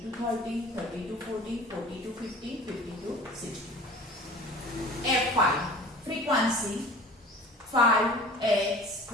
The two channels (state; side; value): normal; both; correlation 0.43